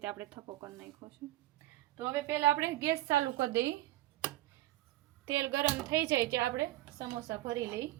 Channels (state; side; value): quieter; left; 16.2 dB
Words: આપણે થપ્પો કરી નાખ્યો છે. તો હવે પહેલાં આપણે ગેસ ચાલુ કરી દઈએ. તેલ ગરમ થઈ જાય ત્યાં આપણે સમોસા ભરી લઈ.